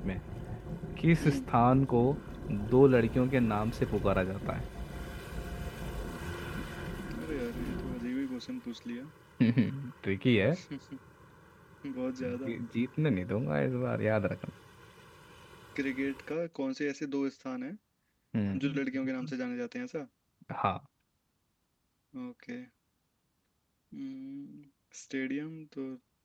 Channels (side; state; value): both; identical; correlation 1.00